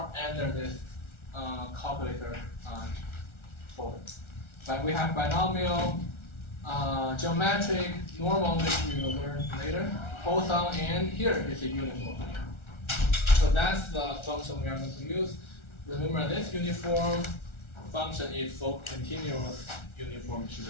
under this calculator folder. But we have binomial, geometric, normal, which we will learn later, Poisson, and here is a uniform. So that's the function we are going to use. Remember, this uniform function is for continuous uniform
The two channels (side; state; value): right; late; 1.4 ms